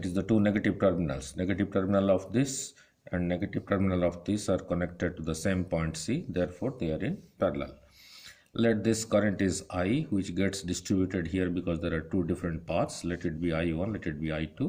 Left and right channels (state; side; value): identical; both; correlation 1.00